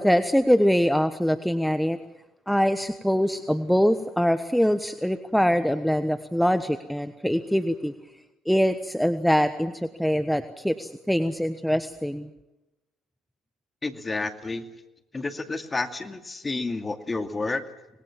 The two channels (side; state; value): both; normal; correlation 0.98